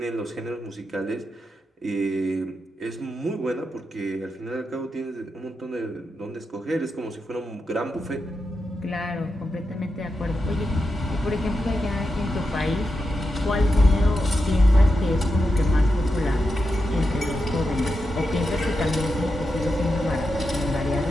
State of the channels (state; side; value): normal; both; correlation 0.87